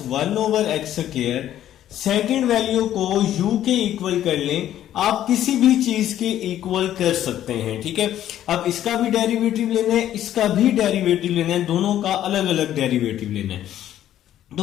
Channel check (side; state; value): right; quieter; 11.8 dB